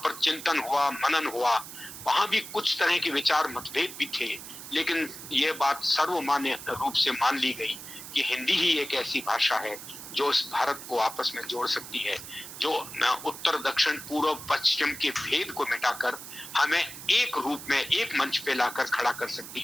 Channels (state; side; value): noise; right; hiss, 12 dB below the sound